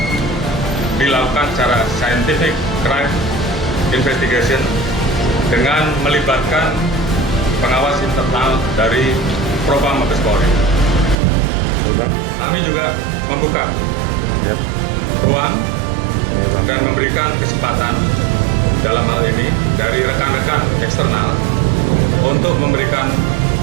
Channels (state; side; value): drops out; left; at 11.2 s